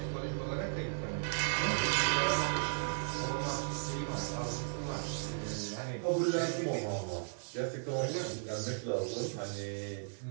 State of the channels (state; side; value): silent; left; digital silence